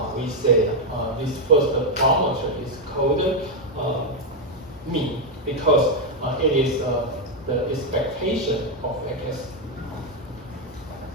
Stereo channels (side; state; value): both; normal; correlation 0.03